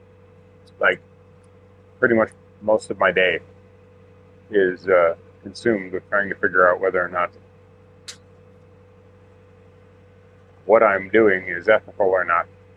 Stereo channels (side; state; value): both; identical; correlation 1.00